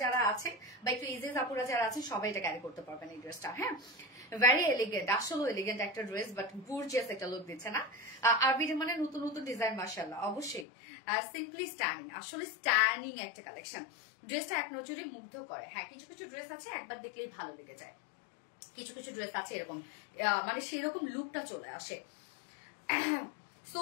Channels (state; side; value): drops out; right; at 10.7 s